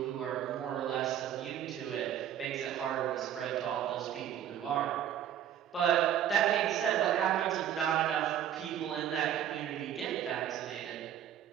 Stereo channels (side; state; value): left; quieter; 10.3 dB